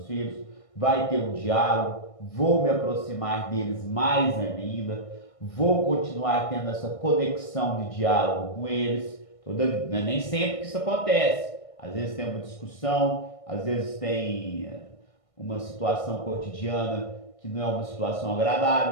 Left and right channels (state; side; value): late; right; 1.6 ms